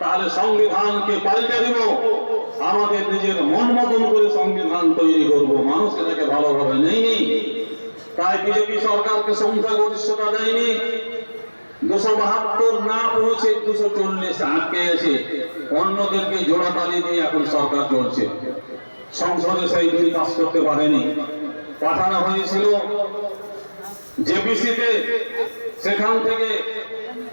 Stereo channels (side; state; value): both; inverted; correlation -1.00